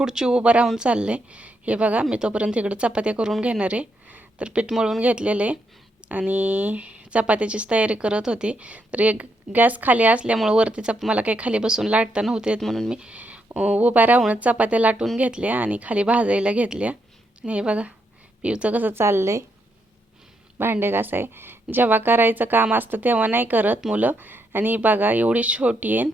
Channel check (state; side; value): normal; both; correlation 0.79